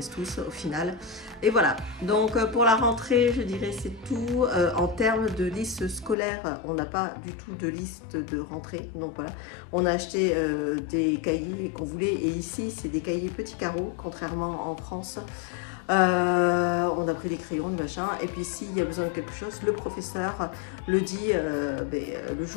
tous au final. Et voilà, donc pour la rentrée, je dirais c'est tout. En termes de liste scolaire, on n'a pas du tout de liste de rentrée. Donc voilà, on a acheté des cahiers qu'on voulait, et ici c'est des cahiers petits carreaux, contrairement en France. On a pris des crayons, des machins, et puis s'il y a besoin de quelque chose, le professeur le dit le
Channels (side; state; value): right; drops out; at 6.2 s